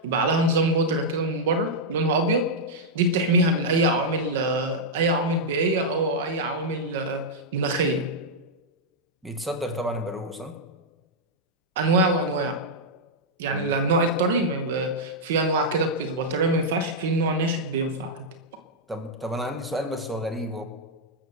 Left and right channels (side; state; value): both; normal; correlation -0.05